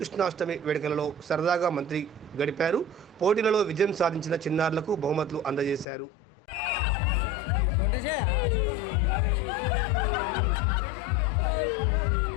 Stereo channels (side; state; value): right; drops out; at 5.9 s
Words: వేడుకలలో సరదాగా మంత్రి గడిపారు. పోటీలలో విజయం సాధించిన చిన్నారులకు బహుమతులు అందజేశారు.